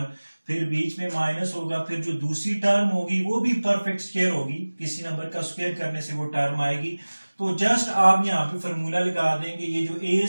फिर बीच में माइनस होगा। फिर जो दूसरी टर्म होगी वो भी परफेक्ट स्क्वायर होगी, किसी नंबर का स्क्वायर करने से वो टर्म आएगी। तो जस्ट आप यहाँ पे फॉर्मूला लगा देंगे। ये जो ए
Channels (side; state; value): both; inverted; correlation -1.00